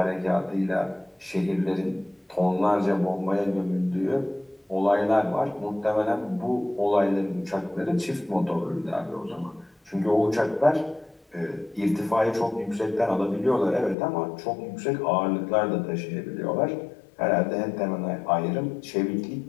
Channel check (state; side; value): drops out; right; at 14.0 s